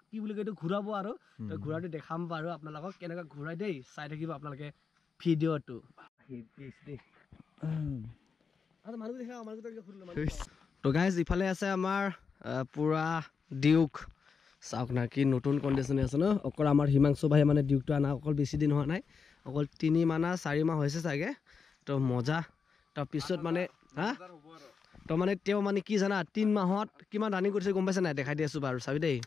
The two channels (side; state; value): right; quieter; 5.6 dB